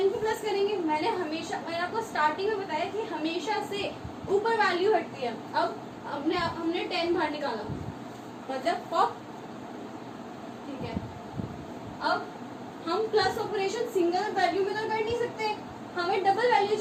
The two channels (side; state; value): both; identical; correlation 1.00